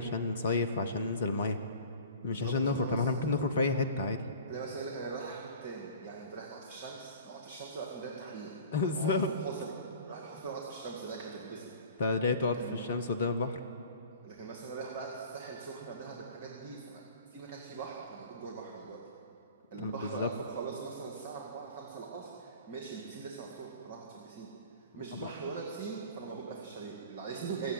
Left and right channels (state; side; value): inverted; both; correlation -0.42